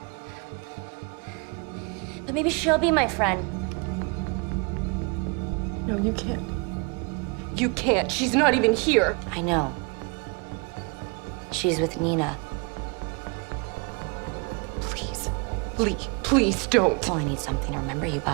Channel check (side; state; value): left; quieter; 32.6 dB